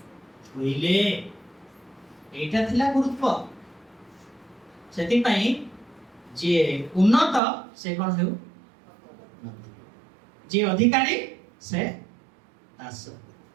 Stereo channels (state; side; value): drops out; left; at 7.4 s